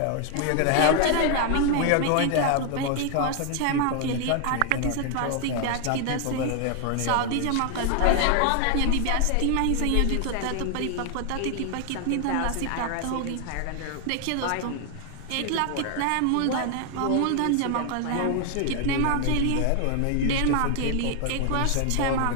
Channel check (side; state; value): both; different; correlation 0.00